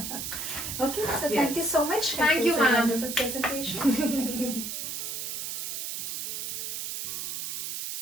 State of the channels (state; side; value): noise; right; hiss, 4 dB below the sound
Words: Okay, so Yes. thank you so much. Thank It you, was a ma'am. wonderful presentation. Thank you.